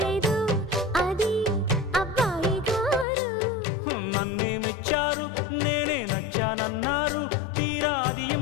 లేదు అది అబ్బాయి గారు నన్నేమిచ్చారు నేనే నచ్చానన్నారు తీరా అది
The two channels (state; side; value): drops out; right; at 3.1 s